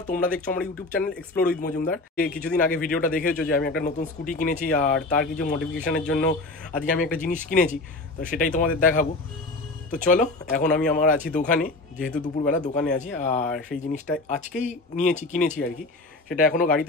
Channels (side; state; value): right; quieter; 3.0 dB